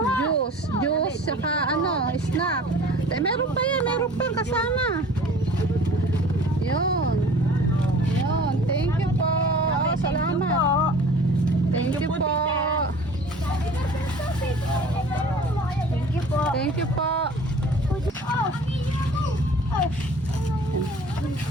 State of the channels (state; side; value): normal; both; correlation 0.46